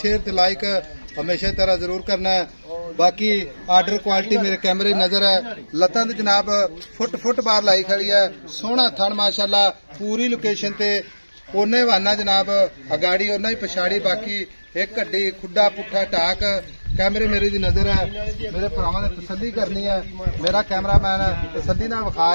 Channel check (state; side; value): inverted; both; correlation -1.00